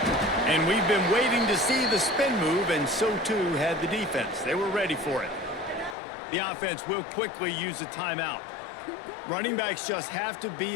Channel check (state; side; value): drops out; right; at 6.0 s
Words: And we've been waiting to see the spin move, and so too had the defense. They were ready for it. The offense will quickly use a timeout. Running backs just have to be